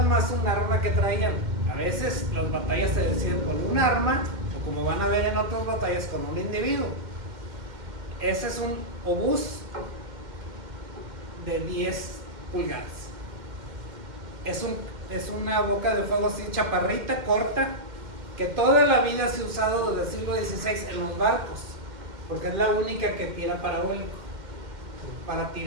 más un arma que traían. A veces las batallas se deciden con un arma, o como van a ver en otras batallas, con un individuo. Ese es un obús de 10 pulgadas. Es una boca de fuego así, chaparrita, corta, que toda la vida se ha usado desde el siglo XVI en los barcos, porque es la única que tira parabólico, para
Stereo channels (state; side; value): late; left; 2.1 ms